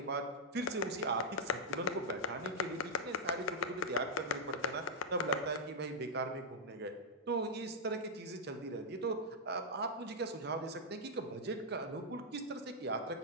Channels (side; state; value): both; normal; correlation -0.05